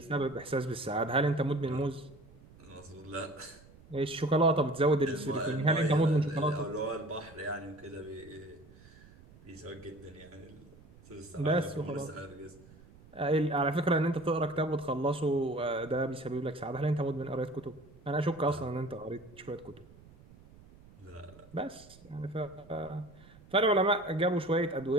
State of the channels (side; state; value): right; noise; rumble, 23 dB below the sound